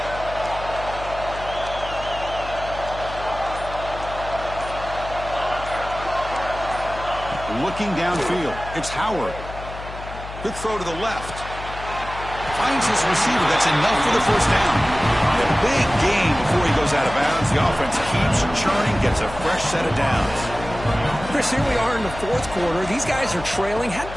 Looking downfield. It's Howard. Quick throw to the left. Finds his receiver. That's enough for the 1st down. A big gain before he goes out of bounds. The offense keeps churning, gets a fresh set of downs. Chris, here we are in the 4th quarter. These guys are trailing. Hadn't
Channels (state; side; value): noise; left; hum, 12 dB below the sound